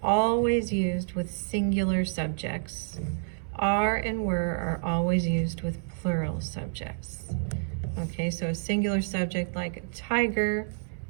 always used with singular subjects. Are and were are always used with plural subjects. Okay, so a singular subject like tiger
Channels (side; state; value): left; silent; 59 dB below the other